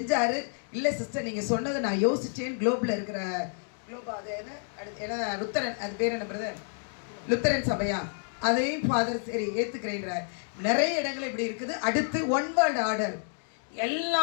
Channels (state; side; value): silent; right; digital silence